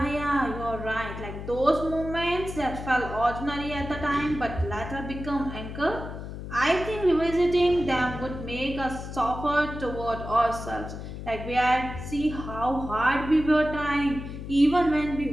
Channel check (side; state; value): left; noise; hum, 9 dB below the sound